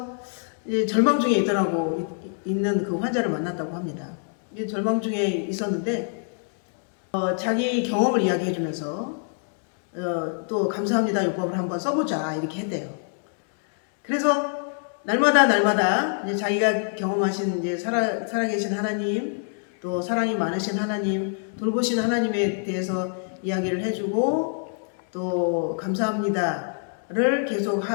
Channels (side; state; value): right; silent; 60 dB below the other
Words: 이제 절망 중에 있는 그 환자를 만났다고 합니다. 이제 절망 중에 있었는데 자기 경험을 이야기해주면서 또 감사합니다 요법을 한번 써보자 이렇게 했대요. 그래서 날마다 이제 자기가 경험하신 이제 살아계신 하나님, 또 사랑이 많으신 하나님, 돌보신 하나님에 대해서 이야기를 해주고 또 감사합니다를 계속